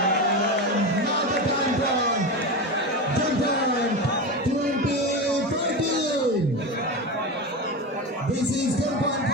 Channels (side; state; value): both; normal; correlation 0.20